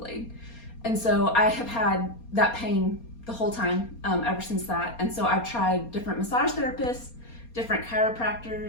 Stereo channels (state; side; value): late; right; 4.3 ms